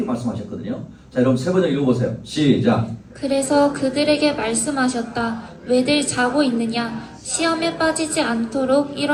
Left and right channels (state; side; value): identical; both; correlation 1.00